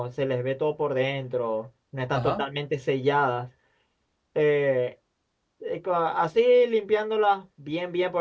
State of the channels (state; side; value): identical; both; correlation 1.00